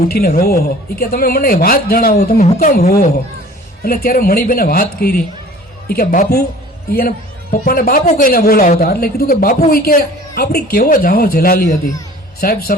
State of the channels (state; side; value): normal; both; correlation 0.47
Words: ઉઠીને રોવો છો, એ કે તમે મને વાત જણાવો, તમે હું કામ રોવો છો. એટલે ત્યારે મણીબેને વાત કરી, એ કે બાપુ, એને પપ્પાને બાપુ કહીને બોલાવતા, એટલે કીધું કે બાપુ એ કે આપણી કેવો જાહો જલાલી હતી. સાહેબ